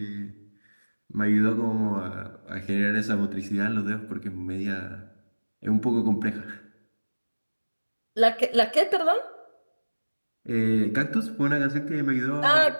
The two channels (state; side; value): inverted; both; correlation -1.00